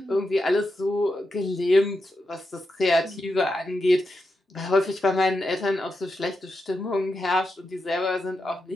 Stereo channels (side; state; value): both; normal; correlation 0.87